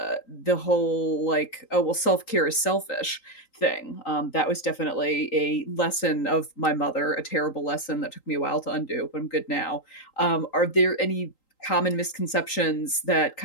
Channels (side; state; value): right; late; 3.8 ms